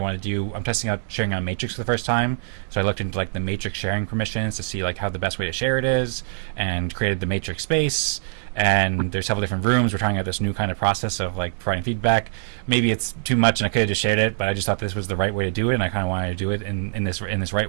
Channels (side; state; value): left; silent; digital silence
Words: want to do. I'm testing out sharing on Matrix for the first time, so I looked into like the Matrix sharing permissions to see like how the best way to share it is, and created the Matrix space. And there's several different rooms. We're trying out this new kind of process of like providing feedback. Maybe it's too much and I could have just shared it, but I just thought this was the right way to do it, and I kind of wanted to do it in this